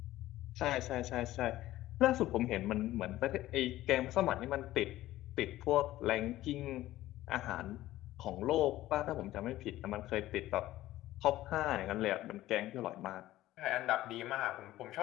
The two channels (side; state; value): right; quieter; 15.3 dB